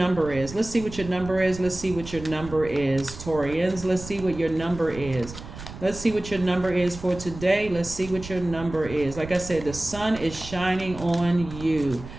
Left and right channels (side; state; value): right; noise; rumble, 13 dB below the sound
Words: is. Let's see what your number is. Let's see what your number is, Taurians. Let's see what your number is. Let's see what your number is for today. Let's see what your number is. Like I said, the sun is shining on you.